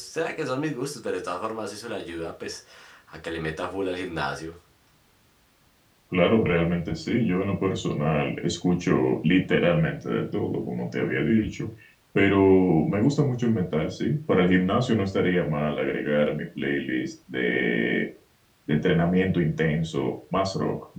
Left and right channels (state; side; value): identical; both; correlation 1.00